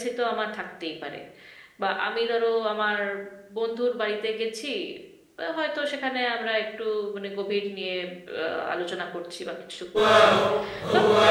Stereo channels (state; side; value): identical; both; correlation 1.00